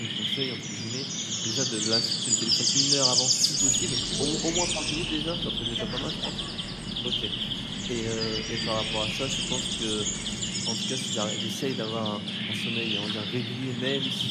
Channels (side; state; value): both; identical; correlation 1.00